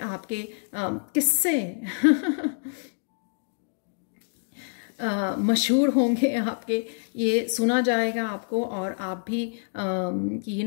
किस्से मशहूर होंगे आपके, ये सुना जाएगा आपको। और आप भी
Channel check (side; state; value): right; silent; digital silence